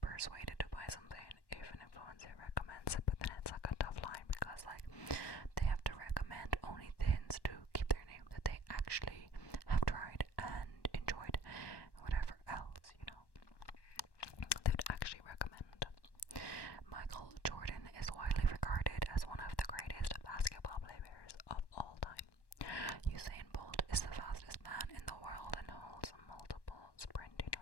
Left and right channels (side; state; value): right; late; 1.1 ms